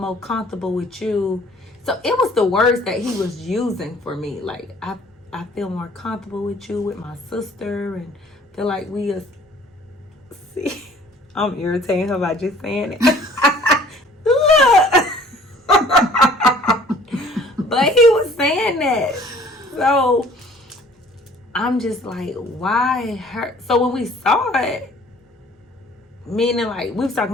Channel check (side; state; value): both; normal; correlation 0.53